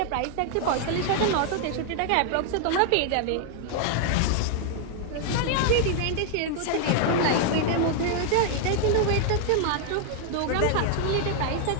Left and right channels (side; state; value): both; different; correlation 0.00